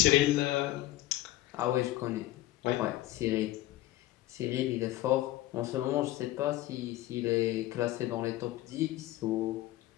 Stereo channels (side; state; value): right; quieter; 16.1 dB